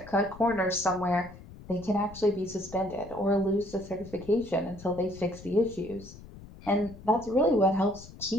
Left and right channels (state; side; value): noise; left; rumble, 17 dB below the sound